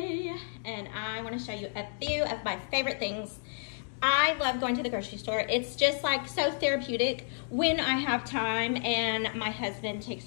and I want to show you a few of my favorite things. I love going to the grocery store. It's just like so therapeutic when I have time and my husband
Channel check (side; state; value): right; silent; 57 dB below the other